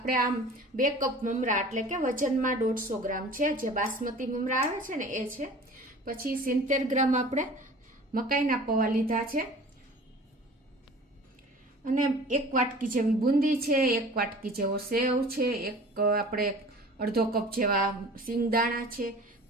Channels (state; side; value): normal; both; correlation 0.43